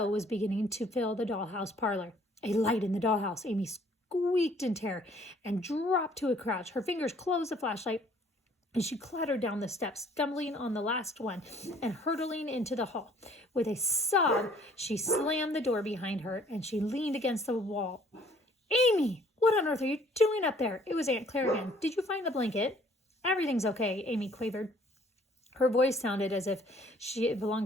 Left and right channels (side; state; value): both; normal; correlation 0.59